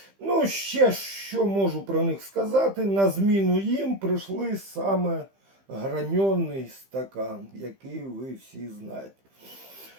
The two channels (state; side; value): late; left; 15 ms